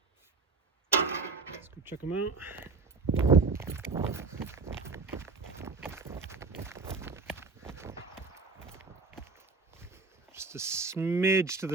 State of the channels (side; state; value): left; quieter; 4.2 dB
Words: Let's go check them out. Just a smidge to